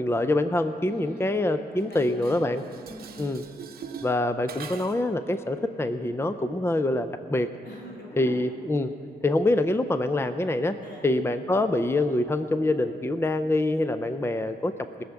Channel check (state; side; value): normal; both; correlation 0.82